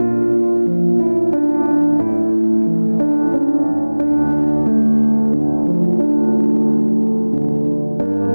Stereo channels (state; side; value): inverted; both; correlation -1.00